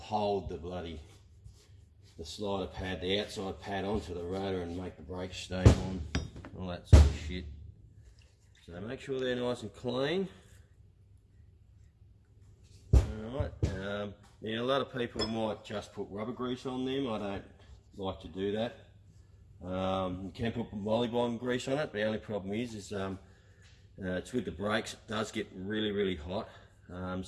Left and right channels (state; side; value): identical; both; correlation 1.00